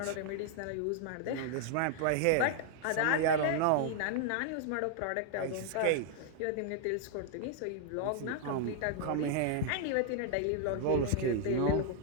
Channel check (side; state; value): both; different; correlation 0.00